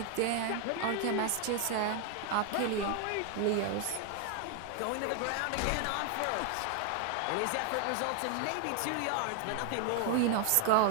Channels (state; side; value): different; both; correlation 0.00